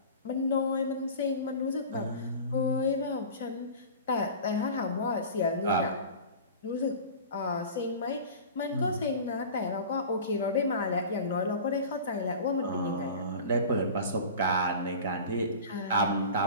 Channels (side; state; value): both; inverted; correlation -0.37